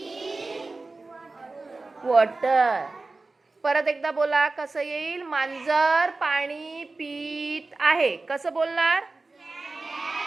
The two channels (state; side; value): quieter; left; 3.5 dB